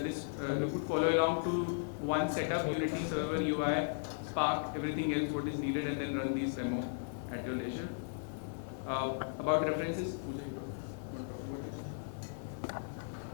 you could follow along to one setup, Unity server, UI, Spark, everything else what is needed, and then run these demo at your leisure. About references, Puja, you want to talk about it?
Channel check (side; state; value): right; silent; 54 dB below the other